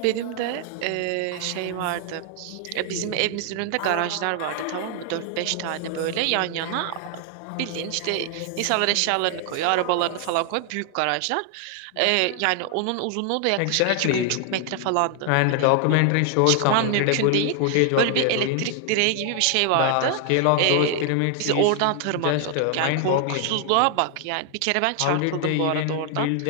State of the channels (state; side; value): different; both; correlation 0.00